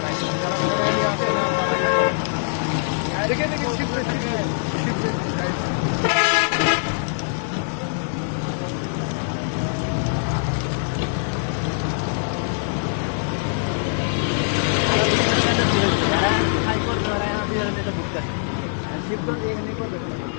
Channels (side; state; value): right; silent; digital silence